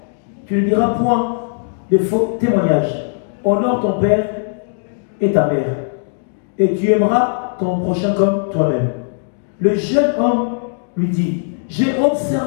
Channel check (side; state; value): right; silent; digital silence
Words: tu ne diras point de faux témoignages, honore ton père et ta mère, et tu aimeras ton prochain comme toi-même. Le jeune homme lui dit, j'ai